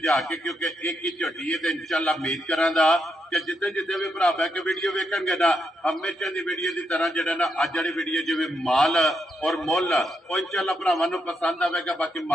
के, क्योंकि एक ही झोटी है तो इंशाअल्लाह उम्मीद करांगा कि जिते जिते भी भरा बह के वीडियो वेखणगे ना हमेशा की वीडियो की तरह जिहड़ा ना अज वाली वीडियो जिवें माल और मुल वो इंशाअल्लाह भरावां नूं पसंद आवेगा। बाकी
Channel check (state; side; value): normal; both; correlation 0.81